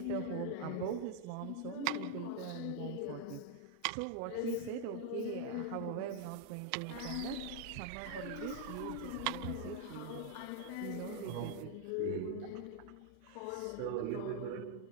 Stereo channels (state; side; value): different; both; correlation 0.00